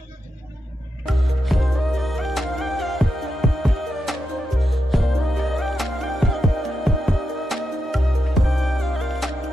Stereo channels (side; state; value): both; normal; correlation 0.86